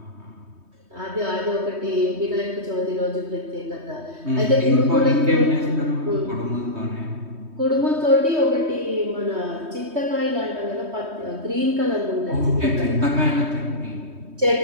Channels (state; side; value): late; left; 3.2 ms